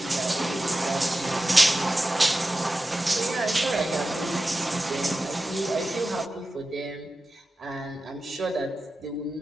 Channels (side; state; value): both; normal; correlation 0.93